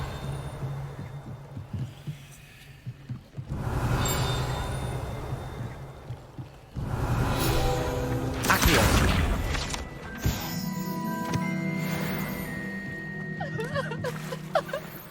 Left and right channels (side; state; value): both; identical; correlation 1.00